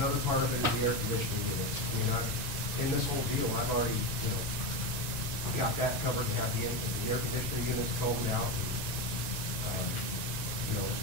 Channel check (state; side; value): late; right; 1.9 ms